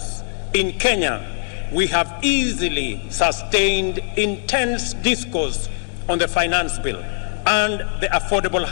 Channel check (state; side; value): silent; right; digital silence